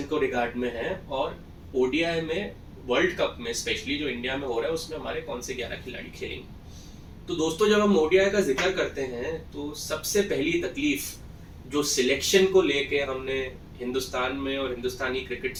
को रिगार्ड में है, और ओडीआई में वर्ल्ड कप में स्पेशली जो इंडिया में हो रहा है उसमें हमारे कौन से 11 खिलाड़ी खेलेंगे। तो दोस्तों, जब हम ओडीआई का जिक्र करते हैं तो सबसे पहली तकलीफ जो सिलेक्शन को लेके हमने हिंदुस्तान में और हिंदुस्तानी क्रिकेट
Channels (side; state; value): both; identical; correlation 1.00